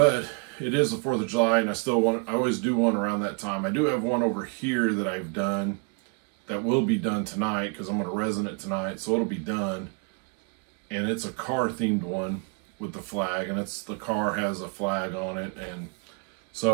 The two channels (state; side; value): quieter; left; 34.2 dB